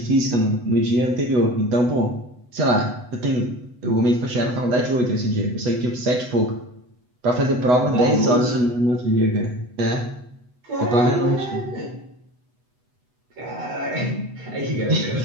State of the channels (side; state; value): left; late; 8.1 ms